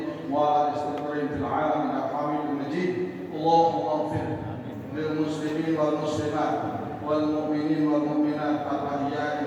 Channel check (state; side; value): identical; both; correlation 1.00